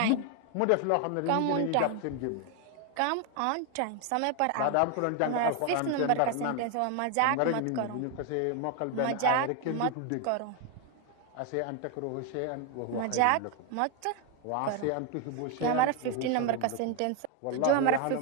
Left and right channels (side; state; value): both; different; correlation 0.01